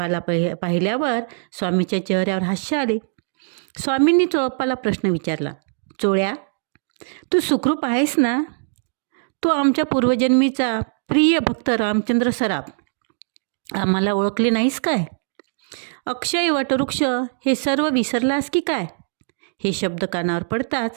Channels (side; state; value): left; silent; digital silence